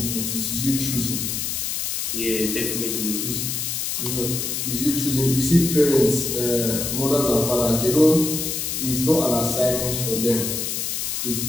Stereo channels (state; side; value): noise; left; hiss, 2 dB below the sound